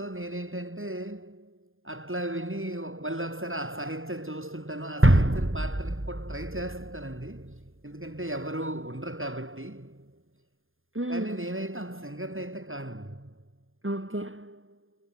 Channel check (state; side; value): late; left; 0.59 ms